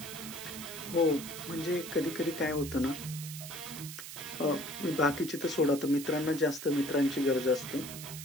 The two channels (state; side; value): noise; right; hiss, 10 dB below the sound